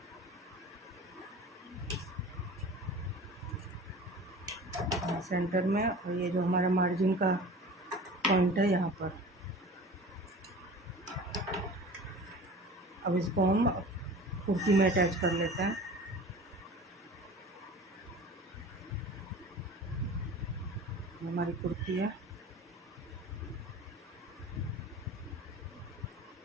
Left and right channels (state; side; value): normal; both; correlation 0.39